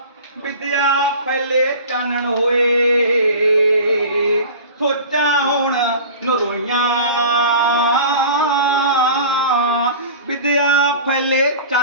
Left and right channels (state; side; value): inverted; both; correlation -0.38